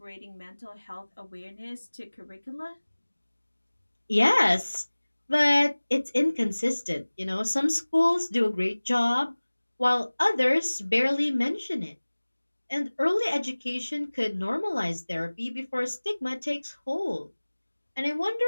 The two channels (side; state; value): both; inverted; correlation -1.00